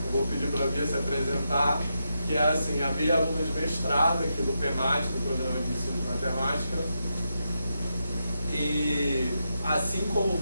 Eu vou pedir para a Bia se apresentar, que é assim, a Bia é aluna de mestrado aqui do PEMAT, do Programa de Ensino de Matemática. E assim como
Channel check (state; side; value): inverted; both; correlation -0.85